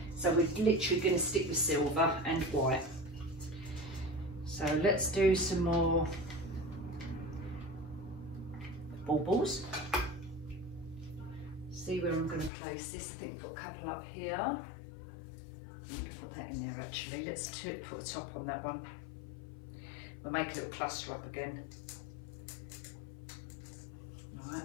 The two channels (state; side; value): drops out; right; at 12.5 s